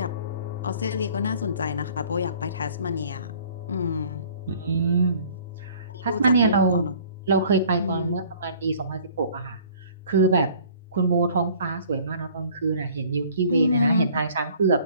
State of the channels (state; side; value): inverted; both; correlation -0.52